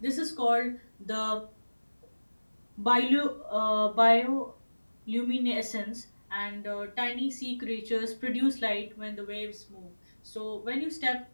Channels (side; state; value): both; inverted; correlation -1.00